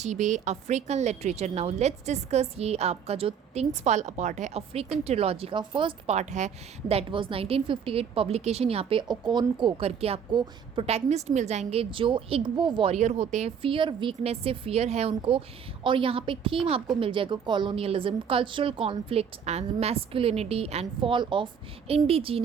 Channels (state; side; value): quieter; left; 7.4 dB